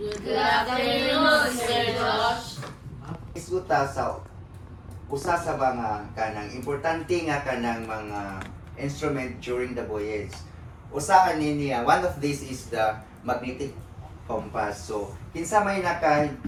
afternoon, Sir Josh. Isuta sa usa sa mga kanang importante nga kanang mga instrument during the voyage. Usa niya, one of these is the magnetic compass. So, kinsa may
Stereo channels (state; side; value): identical; both; correlation 1.00